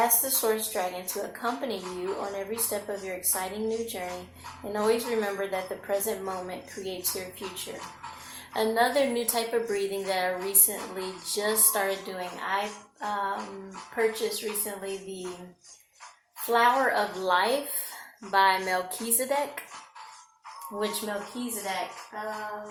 the source dragon to accompany you on every step of your exciting new journey, and always remember that the present moment creates your future. Another new type of breathing that I recently just started doing, I purchased recently the Flower of Life by Melchizedek, which Melchizedek,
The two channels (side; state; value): both; identical; correlation 1.00